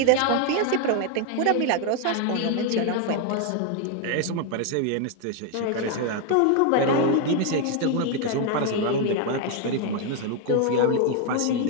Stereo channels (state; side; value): different; both; correlation 0.01